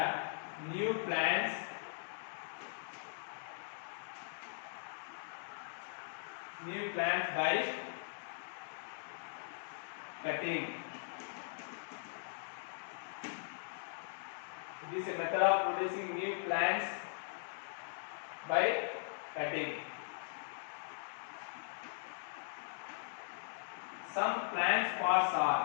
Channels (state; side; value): silent; right; digital silence